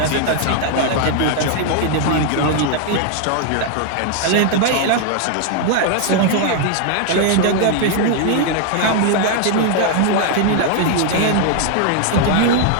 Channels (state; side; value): different; both; correlation 0.00